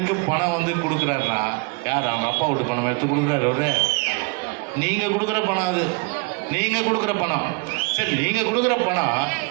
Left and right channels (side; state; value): left; quieter; 30.4 dB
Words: பணம் வந்து கொடுக்குறாருன்னா யார்? அவங்க அப்பா வீட்டு பணம் எடுத்து கொடுக்குறாரு அவரு. நீங்கள் கொடுக்குற பணம், அது நீங்கள் கொடுக்குற பணம். சரி, நீங்கள் கொடுக்குற பணம்